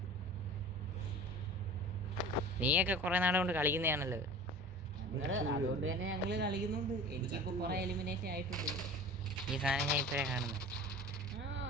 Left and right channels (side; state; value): both; normal; correlation 0.38